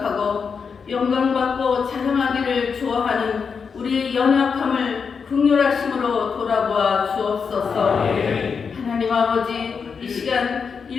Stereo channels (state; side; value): quieter; right; 5.9 dB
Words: 영광받고 자랑하기를 좋아하는 우리의 연약함을 긍휼하심으로 돌아보아 주옵소서. 하나님 아버지, 이 시간